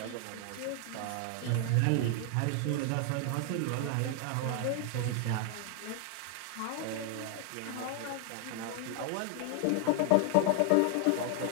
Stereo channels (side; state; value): both; different; correlation 0.00